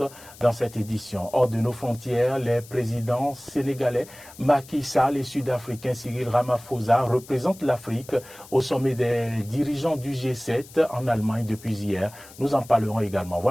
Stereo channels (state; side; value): noise; left; hiss, 20 dB below the sound